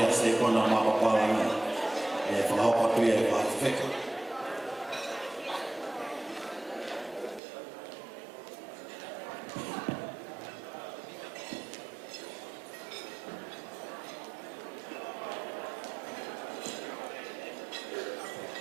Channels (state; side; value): drops out; left; at 7.4 s